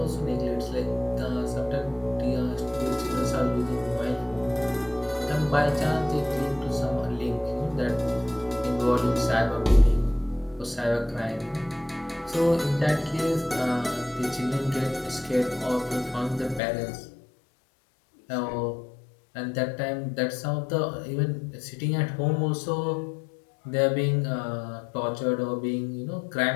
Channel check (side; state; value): right; drops out; at 16.6 s